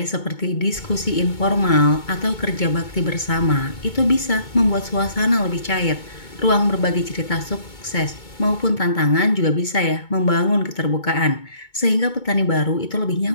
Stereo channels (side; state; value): right; late; 2.2 ms